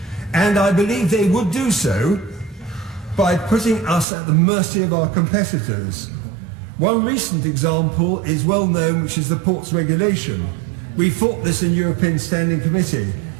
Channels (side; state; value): left; drops out; at 4.0 s